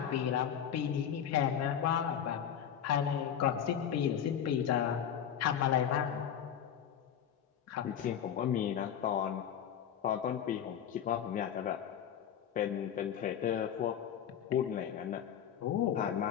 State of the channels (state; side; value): quieter; right; 9.0 dB